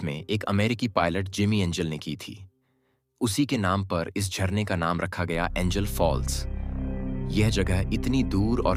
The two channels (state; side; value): identical; both; correlation 1.00